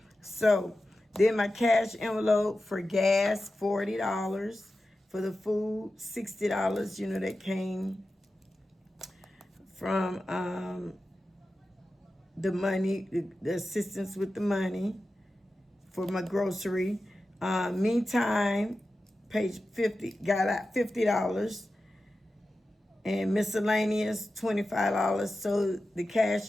so then my cash envelope for gas, $40. For the food, $60, that came from the money, the assistance with the money for my grocery. Meantime, page 50, got out $50. And miscellaneous, $25. So the cash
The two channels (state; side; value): normal; both; correlation 0.93